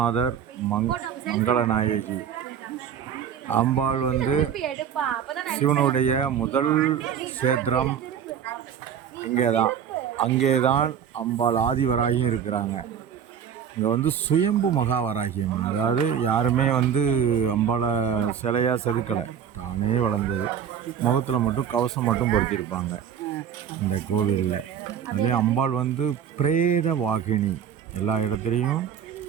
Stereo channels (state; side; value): quieter; left; 8.4 dB